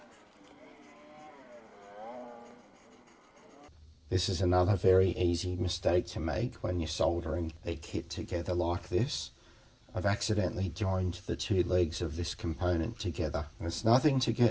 This is another very easy mistake to make when you're soldering a kit together like this. I've accidentally joined the 2 legs of this component together. And it's nothing to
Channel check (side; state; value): both; identical; correlation 1.00